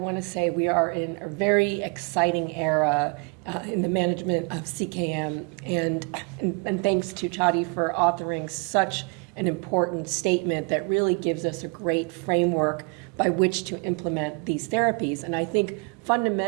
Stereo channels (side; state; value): left; quieter; 32.3 dB